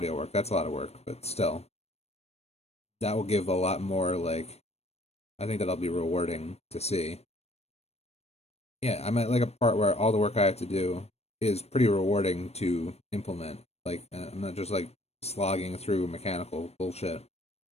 work. That's a lot of work, but still, that will give a lot more. I think that'll be rewarding to see. Yeah, I'm at a part where all the work I have to do is pretty rewarding to implement. I'm not just slogging through mechanical bullshit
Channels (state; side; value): late; right; 0.31 ms